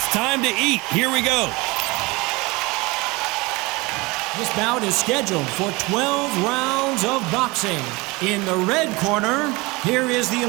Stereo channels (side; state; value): left; quieter; 24.2 dB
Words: time to eat. Here we go. This bout is scheduled for 12 rounds of boxing. In the red corner, here is the